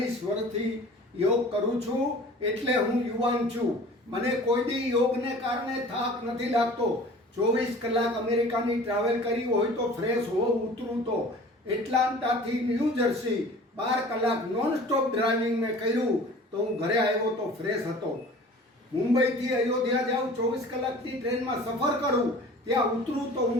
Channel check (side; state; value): both; normal; correlation 0.44